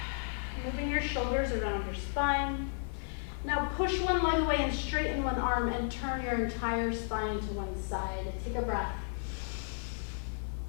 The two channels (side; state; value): right; silent; digital silence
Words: moving your shoulders around your spine. Now push one leg away and straighten one arm and turn your entire spine to one side. Take a breath